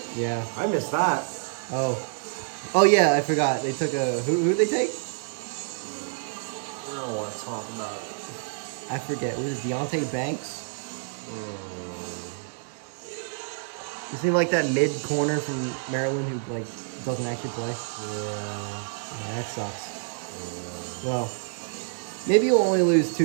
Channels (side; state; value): left; silent; digital silence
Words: Yeah. I missed that. Oh yeah, I forgot. They took a who'd they take? I don't want to talk about it. I forget. Was it Deontay Banks? Is he like that mid corner from Maryland who like doesn't actually play? Yeah, that sucks. Well, maybe you'll only lose